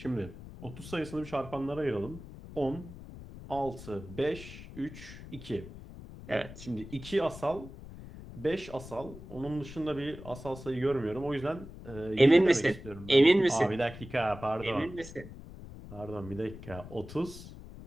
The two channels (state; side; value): noise; left; rumble, 14 dB below the sound